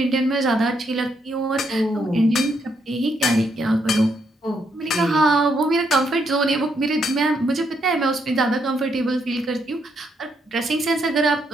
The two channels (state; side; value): normal; both; correlation 0.76